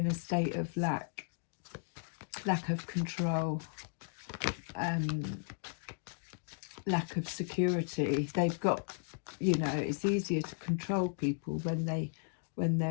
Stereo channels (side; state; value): right; silent; digital silence